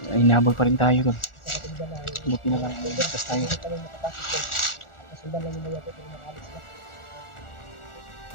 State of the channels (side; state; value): right; late; 1.4 ms